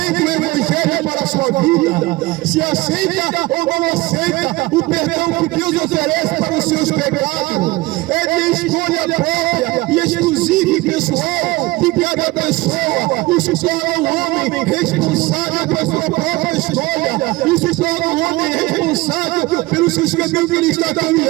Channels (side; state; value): left; quieter; 20.5 dB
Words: o Evangelho para a sua vida, se aceita ou não aceita o perdão que Deus oferece para os seus pecados. É de escolha própria e exclusiva e pessoal de cada pessoa. Isso torna o homem responsável pela sua própria escolha. Isso torna o homem responsável pelos seus caminhos que ele está